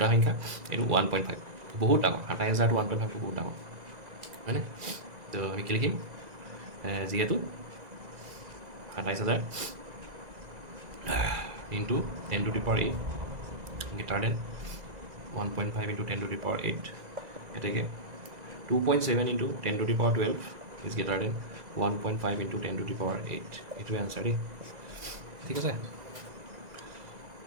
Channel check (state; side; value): late; left; 2.0 ms